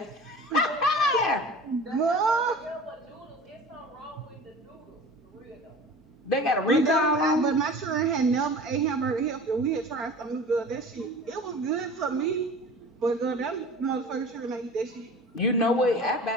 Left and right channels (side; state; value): both; normal; correlation 0.39